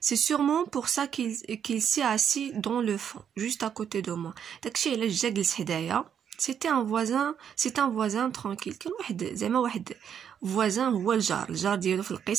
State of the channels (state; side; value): quieter; left; 8.4 dB